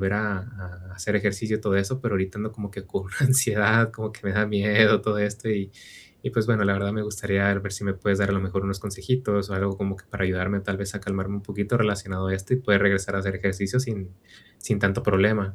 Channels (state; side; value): identical; both; correlation 1.00